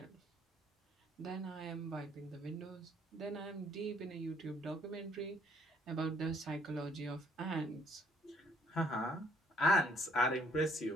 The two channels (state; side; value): normal; both; correlation 0.64